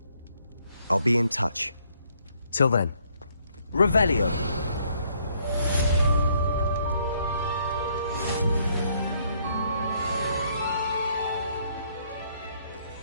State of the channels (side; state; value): both; inverted; correlation -0.68